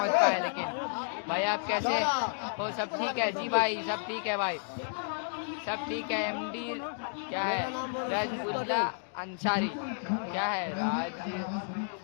पाए। लेकिन भाई आप कैसे हो? सब ठीक है जी भाई, सब ठीक है भाई, सब ठीक है। MD क्या है? राजउल्ला अंसारी, क्या है? राज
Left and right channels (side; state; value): right; silent; digital silence